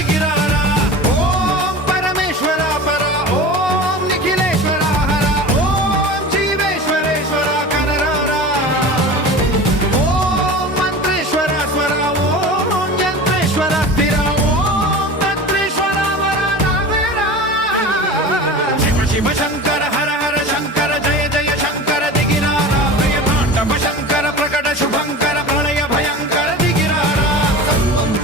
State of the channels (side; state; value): both; normal; correlation 0.34